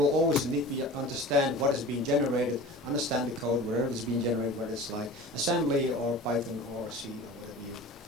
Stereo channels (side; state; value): both; normal; correlation 0.38